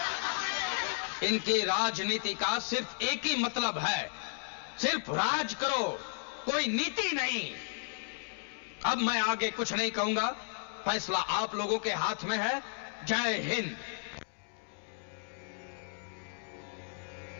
इनकी राजनीति का सिर्फ एक ही मतलब है, सिर्फ राज करो, कोई नीति नहीं। अब मैं आगे कुछ नहीं कहूंगा, फैसला आप लोगों के हाथ में है। जय हिंद।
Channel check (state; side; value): silent; right; digital silence